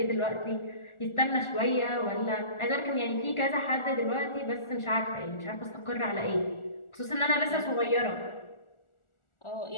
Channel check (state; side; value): late; right; 1.4 ms